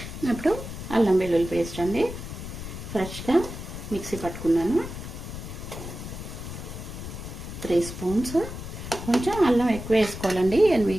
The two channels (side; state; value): left; noise; rumble, 9 dB below the sound